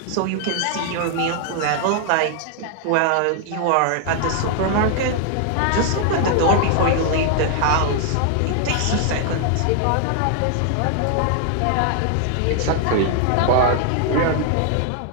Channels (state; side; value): different; both; correlation 0.00